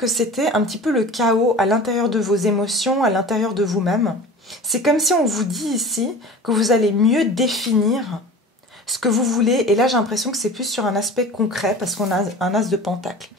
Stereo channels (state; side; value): normal; both; correlation 0.38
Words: c'était un petit peu le chaos à l'intérieur de vos émotions, à l'intérieur de vous-même. C'est comme si on vous dit ici que vous allez mieux définir ce que vous voulez. Et là, j'ai l'impression que c'est plus sur un aspect concret, parce qu'on a un as de pentacle.